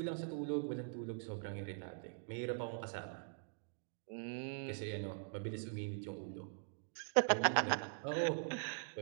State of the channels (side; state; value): left; silent; digital silence